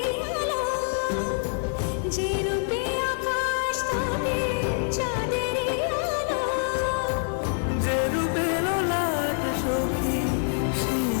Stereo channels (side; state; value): right; silent; 61 dB below the other